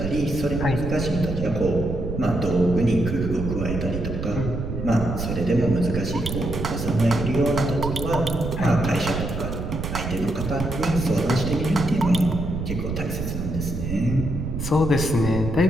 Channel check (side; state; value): right; noise; rumble, 4 dB below the sound